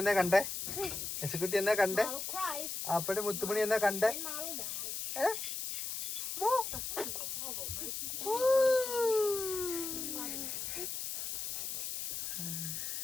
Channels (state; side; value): noise; left; hiss, 4 dB below the sound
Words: കണ്ടേ, എസുക്കുട്ടി എന്നെ കണ്ടേ, അപ്പടി മുത്തുമണി എന്നെ കണ്ടേ.